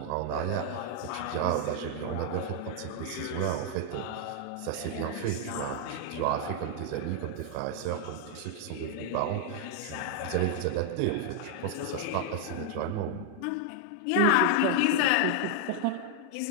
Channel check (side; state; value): both; different; correlation 0.00